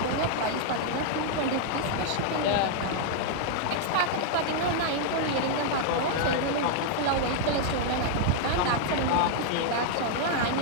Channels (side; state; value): both; different; correlation 0.00